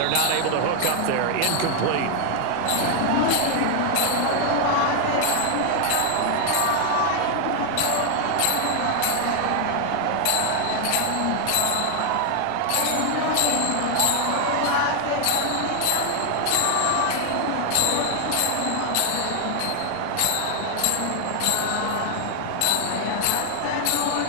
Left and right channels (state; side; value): different; both; correlation 0.00